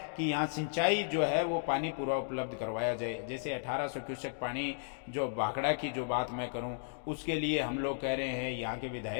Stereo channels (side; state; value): right; silent; digital silence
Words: कि यहाँ सिंचाई जो है वो पानी पूरा उपलब्ध करवाया जाए। जैसे 1800 क्यूसेक पानी जो भाखड़ा की जो बात मैं करूँ उसके लिए हम लोग कह रहे हैं, यहाँ के